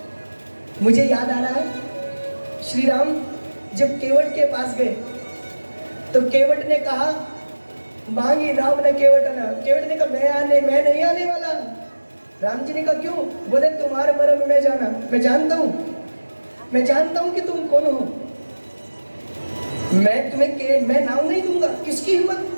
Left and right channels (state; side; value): inverted; both; correlation -1.00